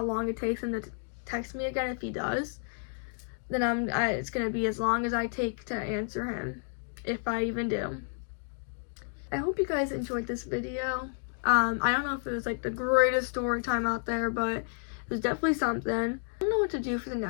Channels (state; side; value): silent; right; 57 dB below the other